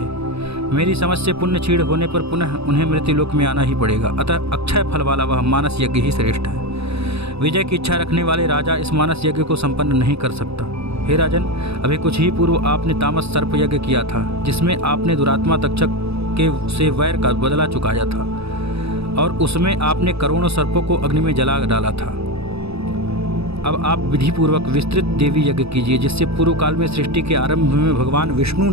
मेरी समझ से पुण्य क्षीण होने पर पुनः उन्हें मृत्युलोक में आना ही पड़ेगा, अतः अक्षय फल वाला वह मानस यज्ञ ही श्रेष्ठ है। विजय की इच्छा रखने वाले राजा इस मानस यज्ञ को संपन्न नहीं कर सकता। हे राजन, अभी कुछ ही पूर्व आपने तामस सर्प यज्ञ किया था, जिसमें आपने दुरात्मा तक्षक के से वैर का बदला चुकाया था और उसमें आपने करोड़ों सर्पों को अग्नि में जला डाला था। अब आप विधिपूर्वक विस्तृत देवी यज्ञ कीजिए, जिससे पूर्व काल में सृष्टि के आरंभ में भगवान विष्णु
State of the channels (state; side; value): late; left; 0.78 ms